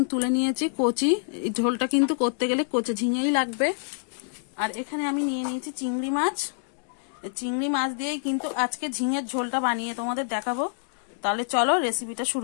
তুলে নিয়েছি কচি। এই ঝোলটা কিন্তু করতে গেলে কচি ঝিঙেই লাগবে। আর এখানে আমি নিয়ে নিয়েছি চিংড়ি মাছ। চিংড়ি মাছ দিয়েই কিন্তু আজকে ঝিঙের ঝোলটা বানিয়ে তোমাদের দেখাবো। তাহলে চলো রেসিপিটা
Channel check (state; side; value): silent; right; digital silence